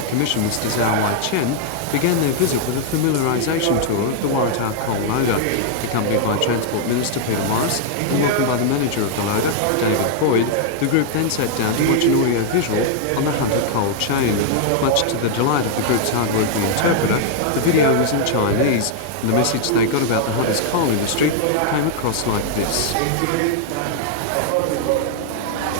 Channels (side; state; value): both; different; correlation 0.00